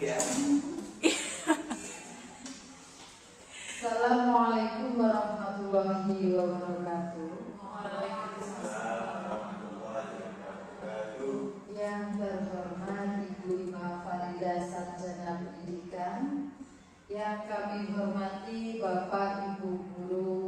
Assalamualaikum warahmatullahi wabarakatuh. Yang terhormat Ibu Ima Farida Sarjana Pendidikan, yang kami hormati Bapak Ibu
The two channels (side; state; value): both; identical; correlation 1.00